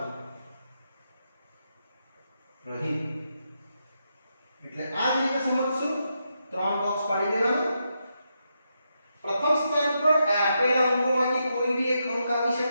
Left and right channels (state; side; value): inverted; both; correlation -0.83